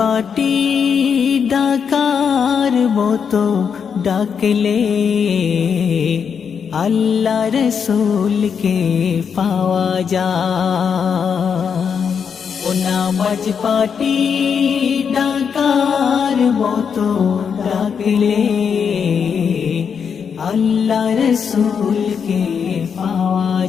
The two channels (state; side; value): quieter; right; 6.8 dB